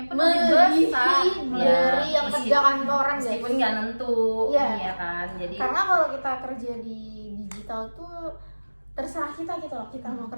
pun Melebihi lebih besar. dari yang Meski- kerja kantoran guys. meskipun nggak nentu, Iya. iya kan. Jadi Karena kalau kita kerja di digital tuh terserah kita gitu loh, kita mau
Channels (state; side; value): inverted; both; correlation -1.00